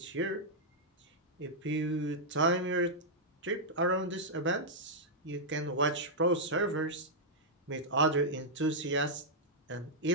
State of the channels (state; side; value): normal; both; correlation -0.07